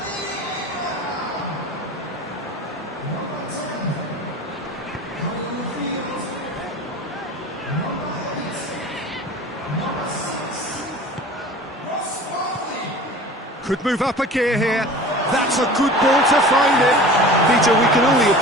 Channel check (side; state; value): both; normal; correlation 0.40